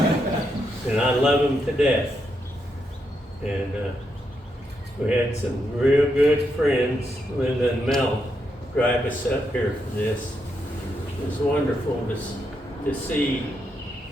And I love them to death. And we had some real good friends, Linda and Mel, drive us up here for this. It was wonderful to see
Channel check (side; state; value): both; normal; correlation 0.81